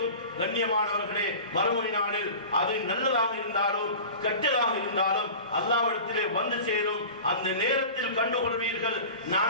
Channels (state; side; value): inverted; both; correlation -0.37